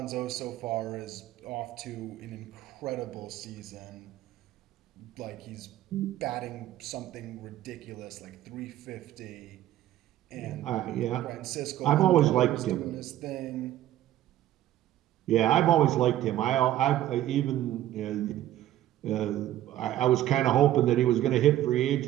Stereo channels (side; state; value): left; quieter; 13.3 dB